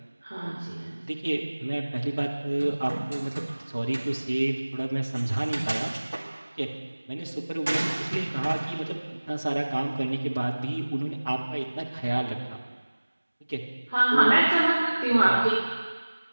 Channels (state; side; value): inverted; both; correlation -1.00